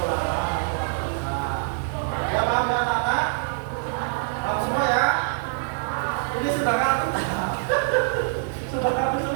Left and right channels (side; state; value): left; silent; digital silence